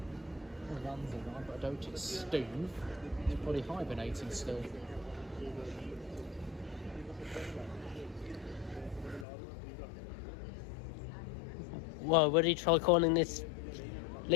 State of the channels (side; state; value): right; drops out; at 9.2 s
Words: The land's alive, but I don't it's Steve. He's probably hibernating still. Well, would he try calling this